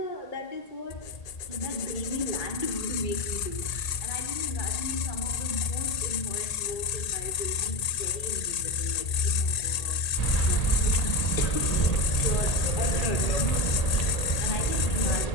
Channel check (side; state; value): right; late; 1.8 ms